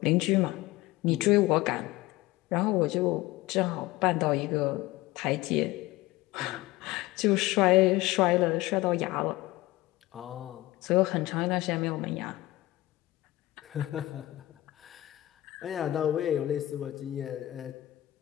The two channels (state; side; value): quieter; right; 17.6 dB